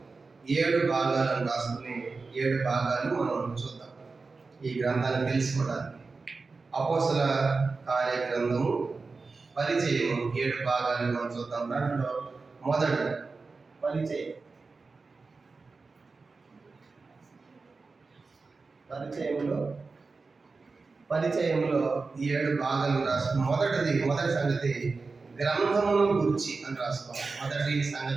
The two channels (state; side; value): quieter; left; 4.1 dB